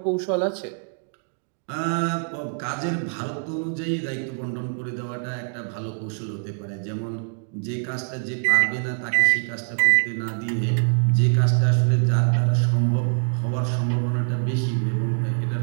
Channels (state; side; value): silent; left; 58 dB below the other